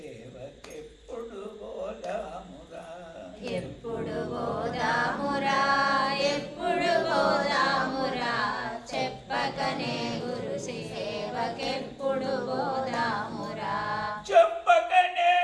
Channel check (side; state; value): both; identical; correlation 1.00